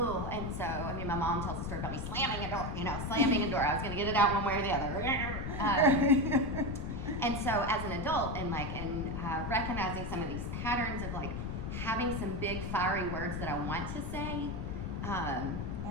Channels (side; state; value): left; noise; rumble, 5 dB below the sound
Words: And so, my mom tells a story about me slamming a door, slamming a door. I was going to get it out one way or the other. And so as an adult and recognizing some of these patterns of having some big fiery words that I want to say,